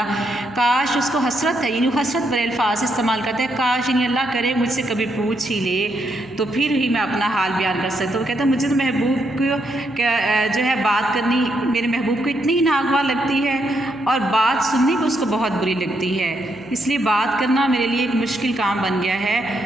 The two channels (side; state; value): right; noise; hum, 28 dB below the sound